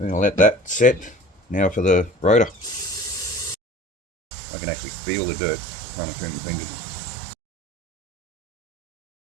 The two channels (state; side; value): drops out; left; at 3.6 s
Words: going to let that set. Now for the rotor. I can actually feel the dirt running through my fingers.